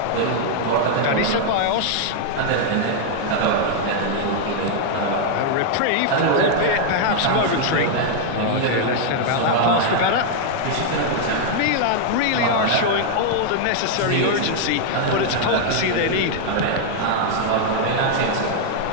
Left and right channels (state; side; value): different; both; correlation 0.00